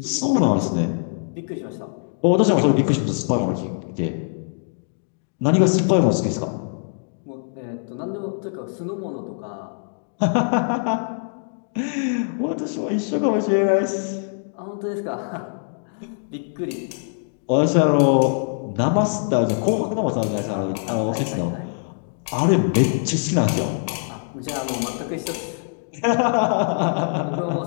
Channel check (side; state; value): right; silent; digital silence